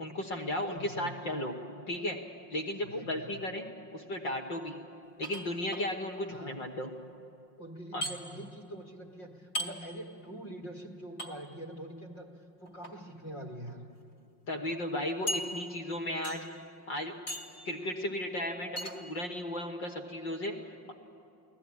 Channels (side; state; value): right; late; 5.6 ms